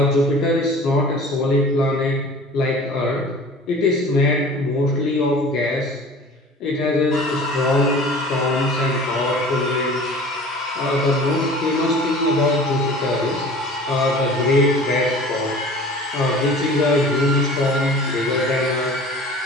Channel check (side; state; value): both; normal; correlation 0.43